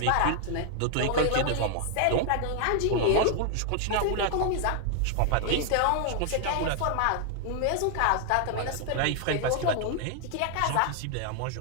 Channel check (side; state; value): both; different; correlation 0.00